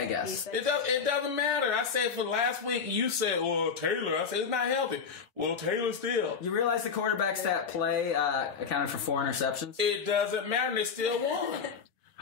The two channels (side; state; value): right; quieter; 6.0 dB